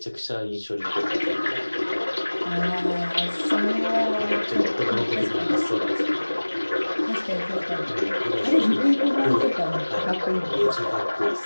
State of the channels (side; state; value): both; inverted; correlation -1.00